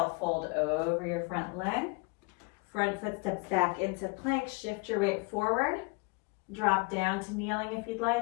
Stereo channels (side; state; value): right; quieter; 30.0 dB